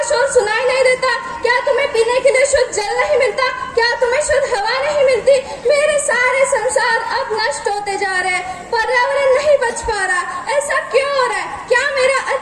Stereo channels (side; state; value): both; identical; correlation 1.00